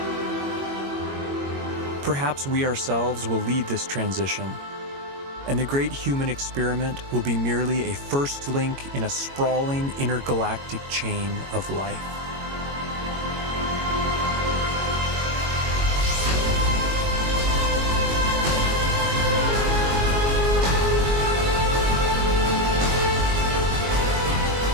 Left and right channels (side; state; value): left; late; 22 ms